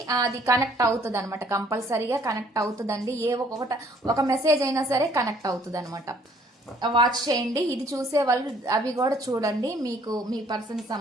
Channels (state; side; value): normal; both; correlation 0.61